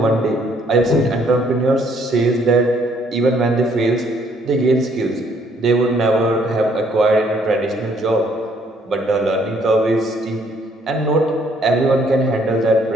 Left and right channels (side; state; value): both; normal; correlation 0.65